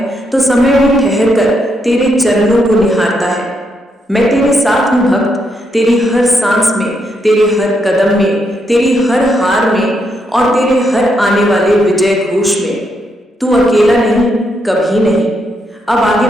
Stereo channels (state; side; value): normal; both; correlation 0.79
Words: तो समय भी ठहर कर तेरे चरणों को निहारता है। मैं तेरे साथ हूँ भक्त, तेरी हर सांस में, तेरे हर कदम में, तेरी हर हार में, और तेरे हर आने वाले विजय घोष में। तू अकेला नहीं, कभी नहीं। अब आगे